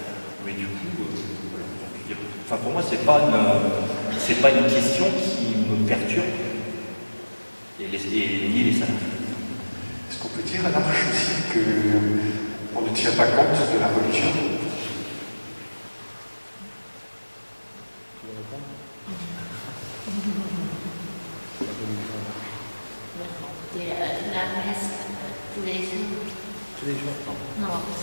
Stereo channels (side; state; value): both; inverted; correlation -1.00